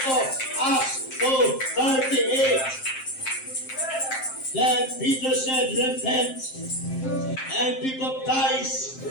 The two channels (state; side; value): late; right; 7.6 ms